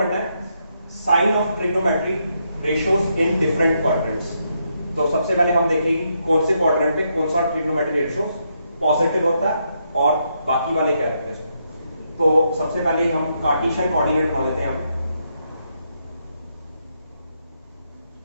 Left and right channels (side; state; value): both; inverted; correlation -0.79